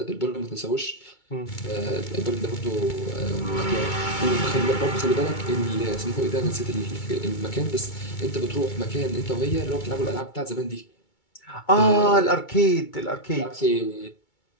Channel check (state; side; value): late; right; 2.2 ms